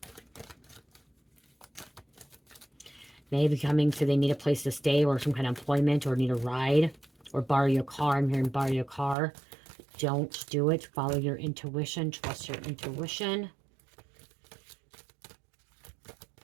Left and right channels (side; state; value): left; drops out; at 9.2 s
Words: Maybe coming so they need a place to stay or some kind of employment or need a ride or borrow your car. I'm hearing borrow your car. Don't do it. Follow your intuition. Trust your intuition.